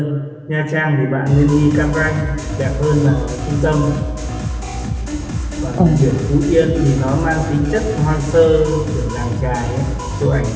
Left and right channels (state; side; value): identical; both; correlation 1.00